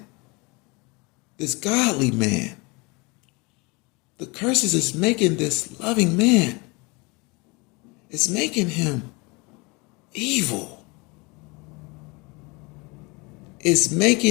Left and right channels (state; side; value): quieter; right; 27.2 dB